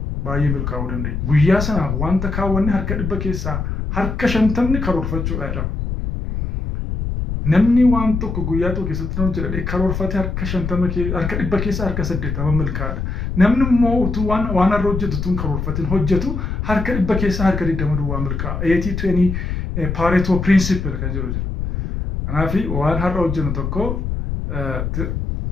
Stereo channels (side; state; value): left; noise; rumble, 3 dB below the sound